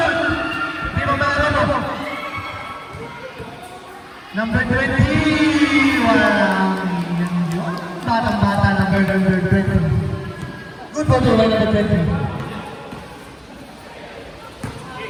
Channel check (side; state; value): both; identical; correlation 1.00